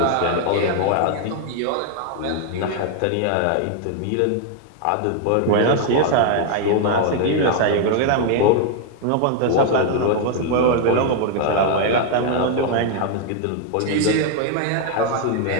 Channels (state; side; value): different; both; correlation 0.00